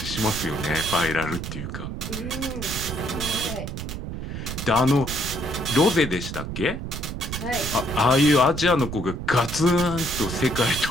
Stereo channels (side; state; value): right; noise; rumble, 6 dB below the sound